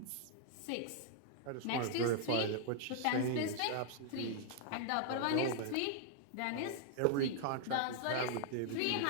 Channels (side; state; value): both; different; correlation -0.01